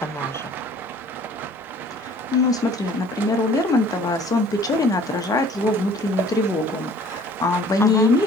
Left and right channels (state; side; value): normal; both; correlation 0.52